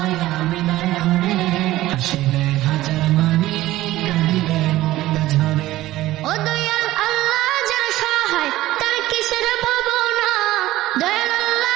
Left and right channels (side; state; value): left; quieter; 16.0 dB